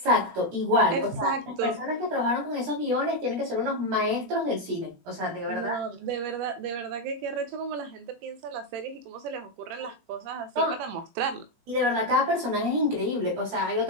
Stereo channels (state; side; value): late; left; 18 ms